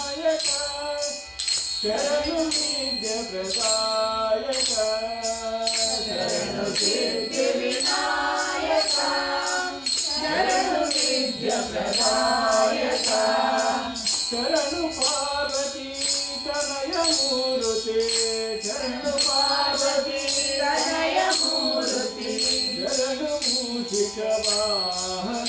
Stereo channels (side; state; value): both; identical; correlation 1.00